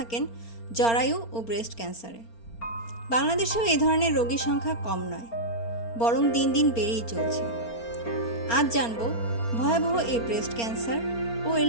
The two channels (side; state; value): right; late; 4.3 ms